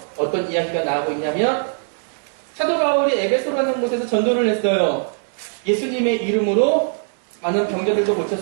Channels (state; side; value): silent; left; digital silence